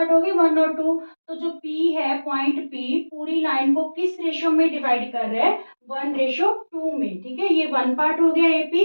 हो गए 1 और 2। तो जो P है पॉइंट P पूरी लाइन को किस रेशो में डिवाइड कर रहा है 1:2 में, ठीक है। ये 1 पार्ट हो गया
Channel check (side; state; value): both; inverted; correlation -1.00